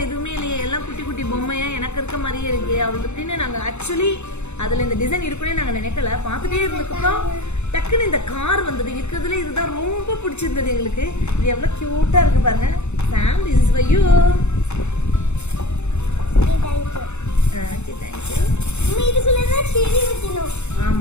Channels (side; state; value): right; late; 0.82 ms